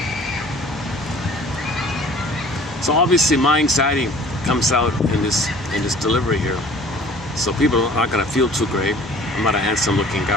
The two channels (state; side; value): normal; both; correlation 0.49